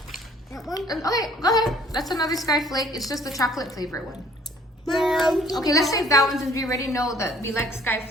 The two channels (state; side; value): normal; both; correlation 0.57